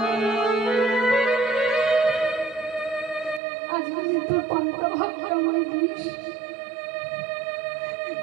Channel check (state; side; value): drops out; left; at 3.4 s